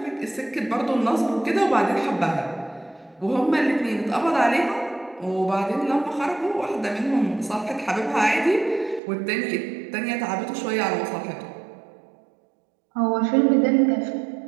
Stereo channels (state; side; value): drops out; left; at 9.0 s